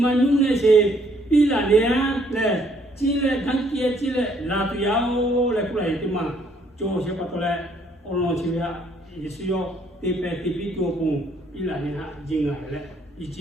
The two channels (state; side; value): normal; both; correlation 0.66